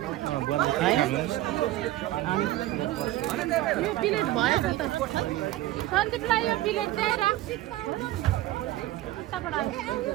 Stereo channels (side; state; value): left; quieter; 15.8 dB